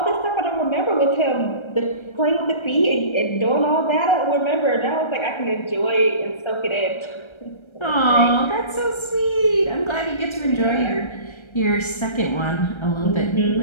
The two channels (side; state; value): right; late; 1.3 ms